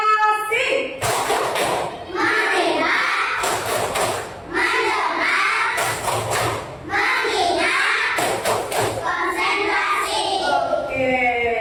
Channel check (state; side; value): identical; both; correlation 1.00